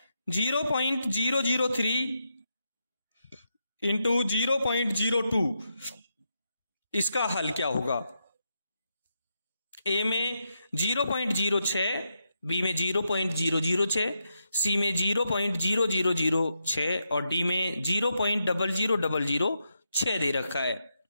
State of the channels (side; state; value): both; inverted; correlation -0.83